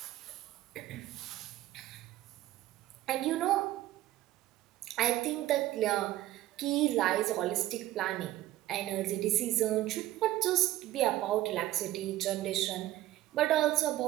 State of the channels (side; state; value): left; quieter; 14.9 dB